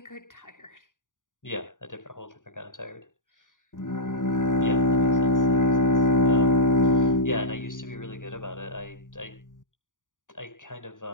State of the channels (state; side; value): late; right; 0.88 ms